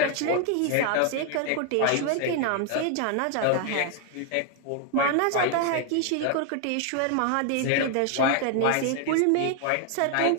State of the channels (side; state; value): both; different; correlation 0.00